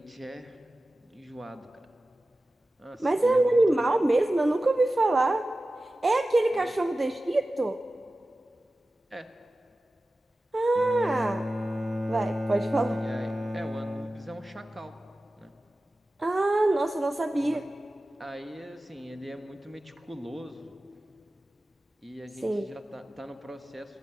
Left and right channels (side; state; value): both; normal; correlation 0.95